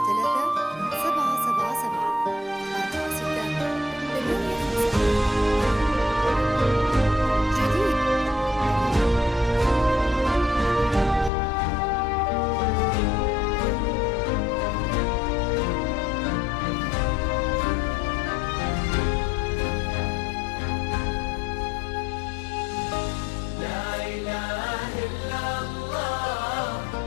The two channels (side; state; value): right; drops out; at 11.3 s